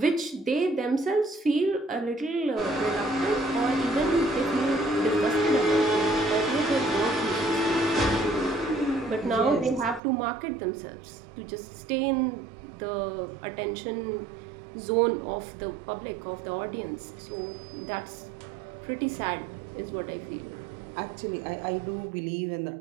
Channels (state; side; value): drops out; left; at 10.0 s